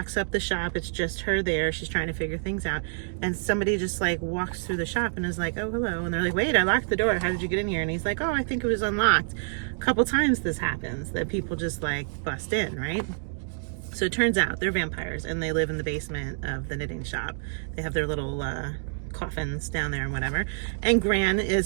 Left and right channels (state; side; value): silent; left; digital silence